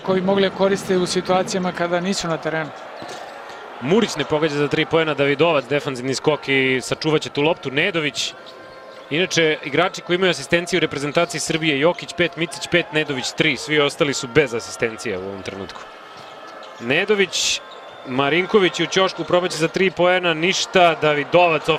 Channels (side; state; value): both; identical; correlation 1.00